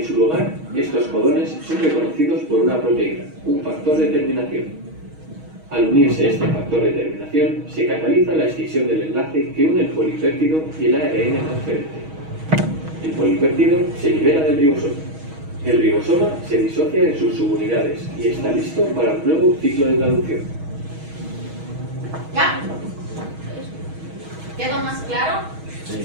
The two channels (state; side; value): late; left; 6.3 ms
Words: su lugar, estos codones son reconocidos por una proteína, un factor de terminación. Al unirse este factor de terminación, se cataliza la extinción del enlace que une el polipéptido y el ARN transferente. El polipéptido se libera del ribosoma. El ribosoma se disocia en sus subunidades y está listo para un nuevo ciclo de traducción. ¿Ya? ¿Quedó más claro?